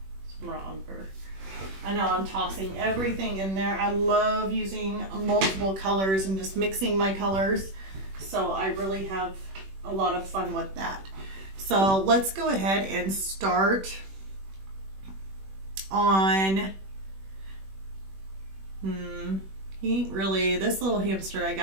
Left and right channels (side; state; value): left; late; 21 ms